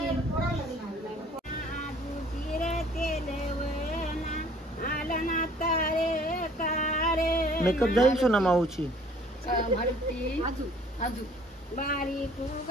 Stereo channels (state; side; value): normal; both; correlation 0.55